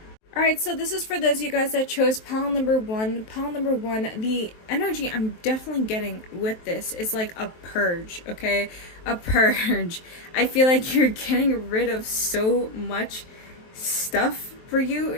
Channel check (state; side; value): late; right; 23 ms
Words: Alright, so this is for those of you guys that chose pile number 1. Pile number 1, the energy I'm definitely getting with this is like a purge, okay? A purge. I feel like you're getting rid of so much stuff for